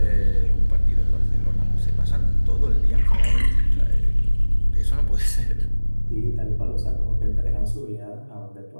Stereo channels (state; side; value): inverted; both; correlation -1.00